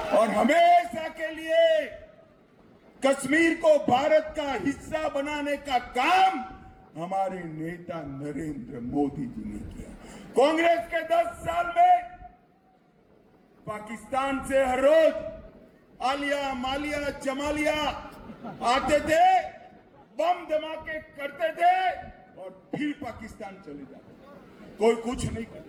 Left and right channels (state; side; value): identical; both; correlation 1.00